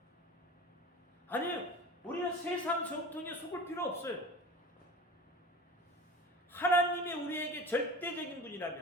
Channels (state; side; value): normal; both; correlation 0.36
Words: 아니에요. 우리는 세상 전통에 속을 필요 없어요. 하나님이 우리에게 절대적인